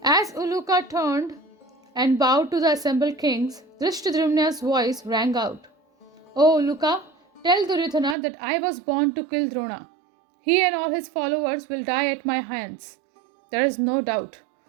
As Uluka turned and bowed to the assembled kings, Drishtadryumna's voice rang out. O Uluka, tell Duryodhana that I was born to kill Drona. He and all his followers will die at my hands. There is no doubt.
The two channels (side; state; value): left; drops out; at 8.2 s